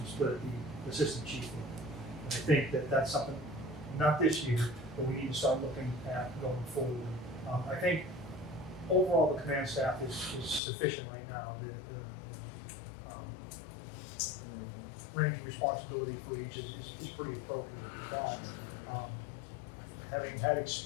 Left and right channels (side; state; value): right; drops out; at 10.6 s